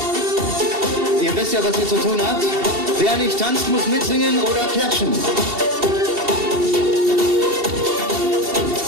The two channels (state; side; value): late; left; 2.7 ms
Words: Ihr wisst ja, was ihr zu tun habt. Wer nicht tanzt, muss mitsingen oder klatschen.